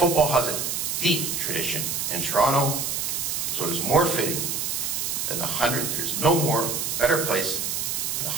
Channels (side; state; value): right; noise; hiss, 1 dB below the sound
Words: has a deep tradition in Toronto, so it is more fitting than the 100th. There's no more better place than the